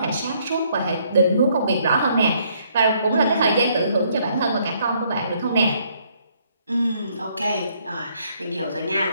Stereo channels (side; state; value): both; inverted; correlation -0.68